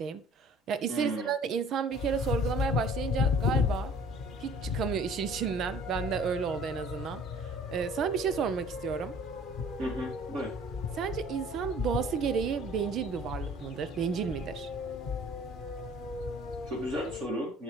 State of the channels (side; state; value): both; normal; correlation 0.51